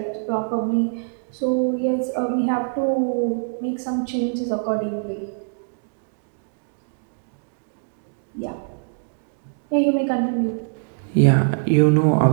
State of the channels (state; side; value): silent; left; digital silence